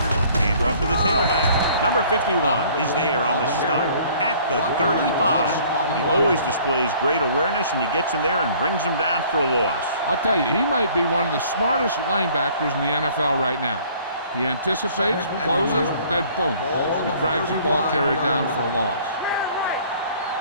Hand off to the tailback. Number 51 is there on the stop at the 35. He always displays great awareness, and he gets in there and brings him down for a loss. I'll tell you, he might be one of the smartest linebackers in the NFL right now. He anticipates, closes, then boom, he drags the ball carrier down for a loss.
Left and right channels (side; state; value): both; inverted; correlation -0.55